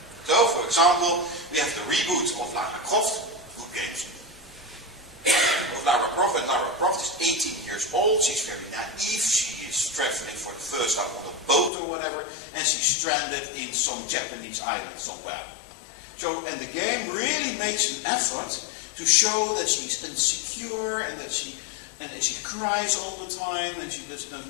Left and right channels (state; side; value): drops out; right; at 11.7 s